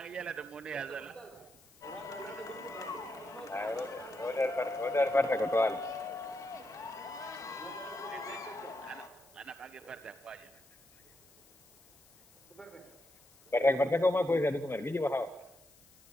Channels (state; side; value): noise; left; hiss, 26 dB below the sound